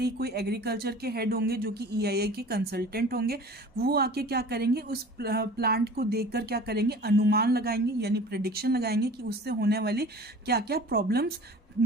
ही कोई एग्रीकल्चर के हेड होंगे जो कि ईआईए के कंसल्टेंट होंगे, वो आके क्या करेंगे, उस प्लांट को देखकर क्या करेंगे, अनुमान लगाएंगे यानी प्रेडिक्शन लगाएंगे कि उससे होने वाली क्या क्या प्रॉब्लम्स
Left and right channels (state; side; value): normal; both; correlation 0.42